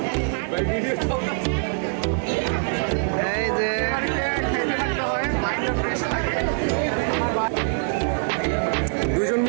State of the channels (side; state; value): left; silent; 63 dB below the other